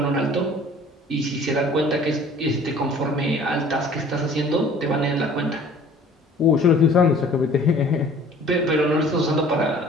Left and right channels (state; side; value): normal; both; correlation 0.50